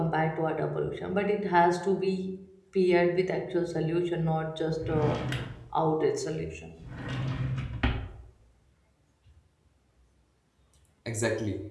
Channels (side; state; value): both; identical; correlation 1.00